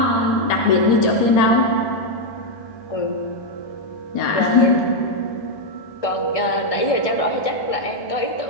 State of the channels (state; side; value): late; right; 1.6 ms